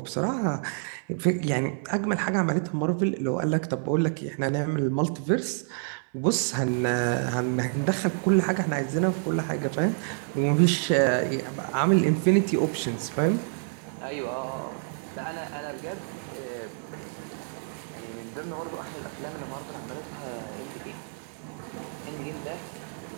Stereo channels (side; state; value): left; silent; 59 dB below the other